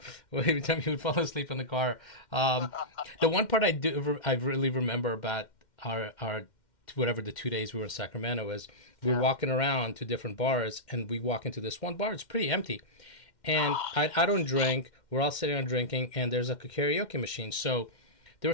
every time he would fall asleep in the car. The one part I really remember about our whatever the 2 days we were in Sacramento is we were walking around to different bars, and we walk into this one bar. It's pretty empty, and I don't drink. We're all sitting around drinking, and there's like a karaoke machine. So there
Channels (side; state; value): right; late; 2.1 ms